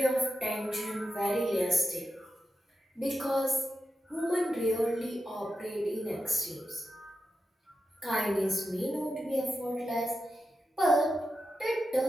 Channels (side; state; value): both; normal; correlation 0.89